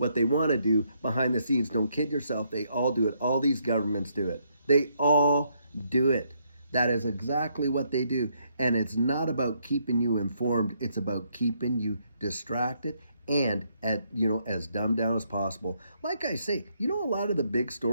they want to do behind the scenes. Don't kid yourself. They all do it. All these governments do it. They all do it. That is exactly what they do. And it's not about keeping you informed. It's about keeping you distracted and as dumbed down as possible. Like I say, a lot of the big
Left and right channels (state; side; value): inverted; both; correlation -0.74